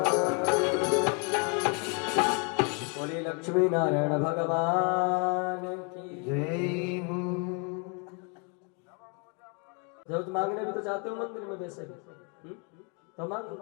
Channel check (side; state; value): right; quieter; 36.2 dB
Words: बोले लक्ष्मी नारायण भगवान की जय हो। जब तुम मांगने भी तो चाहते हो मंदिर में वैसे भी तो मांगो।